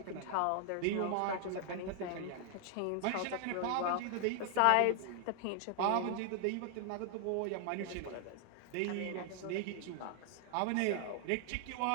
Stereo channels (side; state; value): both; different; correlation 0.00